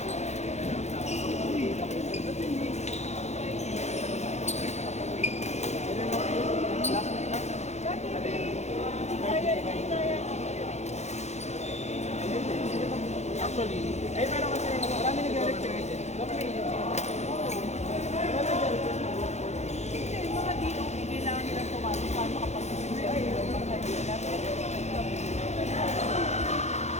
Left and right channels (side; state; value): right; late; 0.33 ms